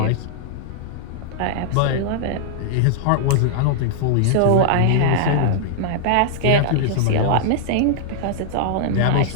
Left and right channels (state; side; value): different; both; correlation -0.01